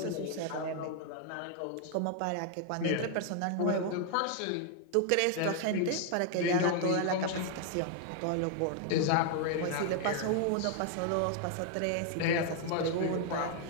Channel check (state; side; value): different; both; correlation 0.00